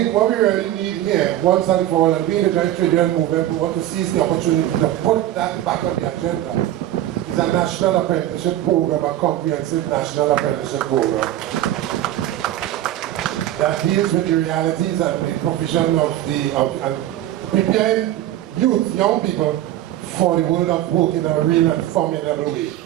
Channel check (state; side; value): quieter; left; 13.2 dB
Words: what we really need here, once and for all, and we in the joint trade union movement, we want to seize the opportunity to put that back on the agenda, is a national apprenticeship program, a comprehensive national apprenticeship program that deals with the realities and the provision of preparing youth, young people, for the world of work in a real and formidable way.